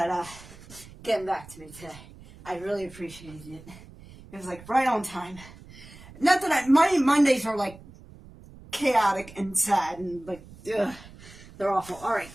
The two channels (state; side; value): noise; right; rumble, 19 dB below the sound